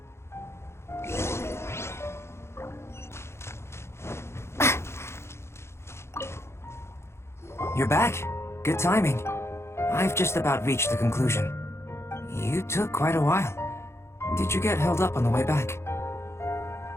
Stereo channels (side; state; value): right; late; 0.13 ms